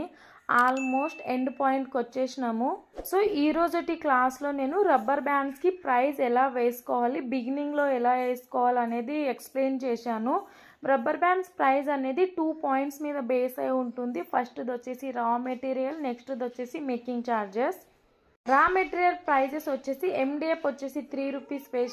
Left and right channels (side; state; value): both; identical; correlation 1.00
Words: ఆల్మోస్ట్ ఎండ్ పాయింట్కి వచ్చేసినాము. సో ఈ రోజుటి క్లాస్లో నేను రబ్బర్ బ్యాండ్స్కి ప్రైస్ ఎలా వేసుకోవాలి, బిగినింగ్లో ఎలా వేసుకోవాలి అనేది ఎక్స్ప్లెయిన్ చేశాను. రబ్బర్ బ్యాండ్స్ ప్రైస్ అనేది 2 పాయింట్స్ మీద బేస్ అయి ఉంటుంది. ఫస్ట్ది వచ్చేసి రా మెటీరియల్, నెక్స్ట్ది వచ్చేసి making charges. Raw material prices వచ్చేసి MDF వచ్చేసి 3 రూపీస్